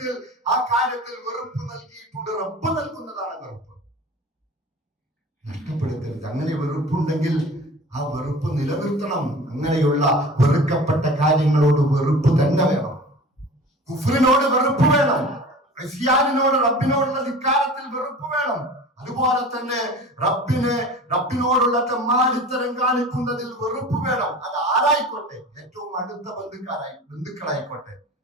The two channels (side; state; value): both; normal; correlation 0.39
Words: ആ കാര്യത്തിൽ വെറുപ്പ് നൽകിയിട്ടുണ്ട്. റബ്ബ് നൽകുന്നതാണ് വെറുപ്പ്, നഷ്ടപ്പെടുത്തരുത്. അങ്ങനെ വെറുപ്പുണ്ടെങ്കിൽ ആ വെറുപ്പ് നിലനിർത്തണം. അങ്ങനെയുള്ള വെറുക്കപ്പെട്ട കാര്യങ്ങളോട് വെറുപ്പ് തന്നെ വേണം. കുഫ്രിനോട് വെറുപ്പ് വേണം, ക്രിസ്ത്യാനിനോട്, റബ്ബിനോടുള്ള ധിക്കാരത്തിൽ വെറുപ്പ് വേണം. അതുപോലെ തന്നെ റബ്ബിനോടുള്ള തെമ്മാടിത്തരം കാണിക്കുന്നതിൽ വെറുപ്പ് വേണം. അത് ആരായിക്കോട്ടെ, ഏറ്റവും അടുത്ത ബന്ധുക്കളായിക്കോട്ടെ,